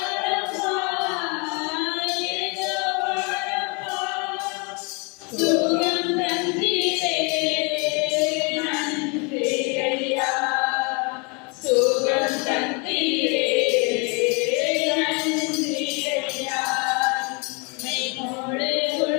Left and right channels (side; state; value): right; quieter; 31.9 dB